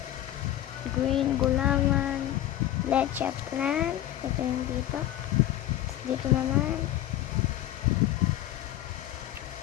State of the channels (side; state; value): right; quieter; 13.3 dB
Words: gulaman, leche plan, ito yung dito, dito naman,